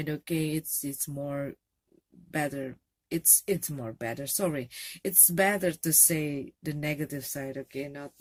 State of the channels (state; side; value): identical; both; correlation 1.00